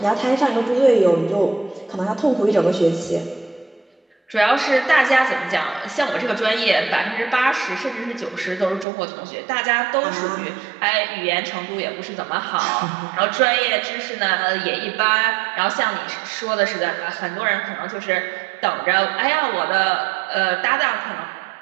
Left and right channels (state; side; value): drops out; left; at 8.8 s